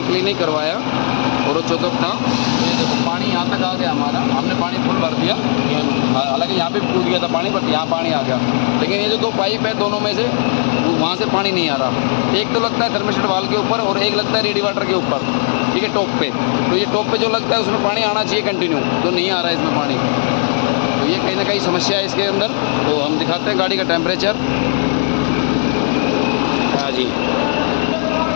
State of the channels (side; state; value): right; silent; digital silence